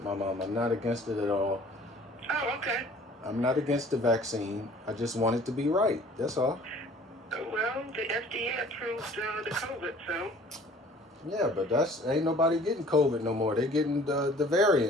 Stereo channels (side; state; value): both; normal; correlation 0.51